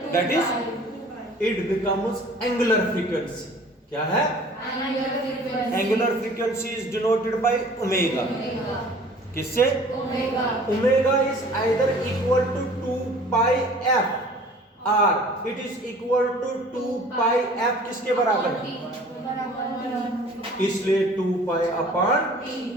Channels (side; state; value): both; normal; correlation 0.48